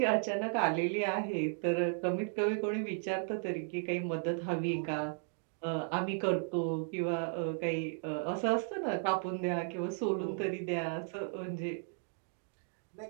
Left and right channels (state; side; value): silent; left; 54 dB below the other